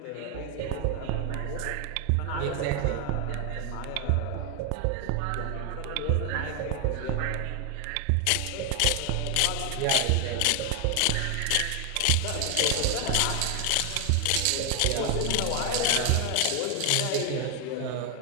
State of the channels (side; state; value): both; different; correlation 0.00